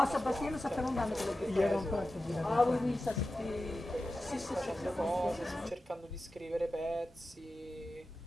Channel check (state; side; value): normal; both; correlation 0.93